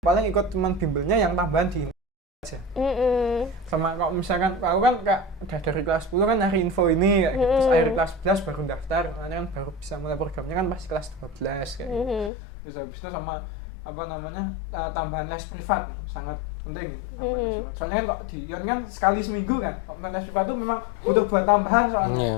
ikut cuman bimbelnya yang tambahan di aja. Sama kalau misalkan aku kan kak udah dari kelas 10 kan nyari info ini kayak gitu. Terus akhir kelas 11 baru daftar, makanya kan baru bisa mulai programnya kan pasti kelas 12 kayak gitu. Terus habis itu sama apa namanya tambahan les privat sangat penting gitu, tambahan les privat. Soalnya kan kok di Ion kan sekali seminggu kan, kok les privat itu memang butuh buat tambahan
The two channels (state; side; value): drops out; right; at 12.3 s